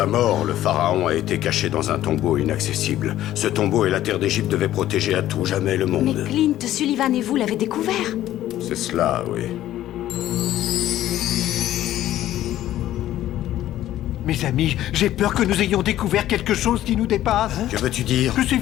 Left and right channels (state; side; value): quieter; right; 13.3 dB